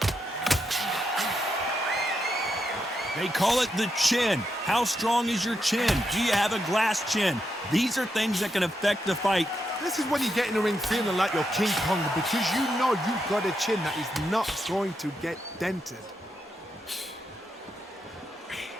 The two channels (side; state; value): both; normal; correlation 0.83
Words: They call it the chin. How strong is your chin? Do you have a glass chin? These are things that can affect the fight. This is when you get in the ring feeling like you're King Kong because you know you've got a chin that is not going to get dented.